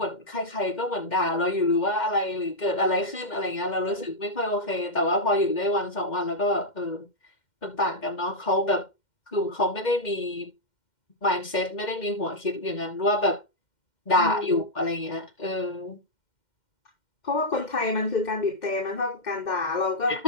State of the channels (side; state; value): right; late; 2.1 ms